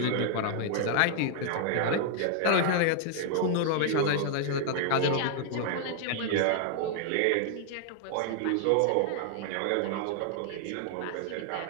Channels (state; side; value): different; both; correlation 0.00